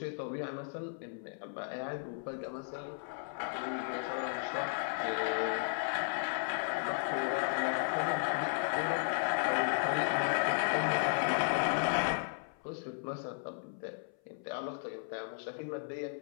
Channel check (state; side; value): silent; right; 54 dB below the other